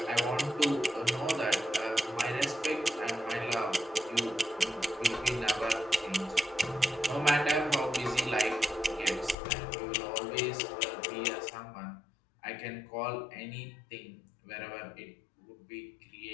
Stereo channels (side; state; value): right; drops out; at 9.3 s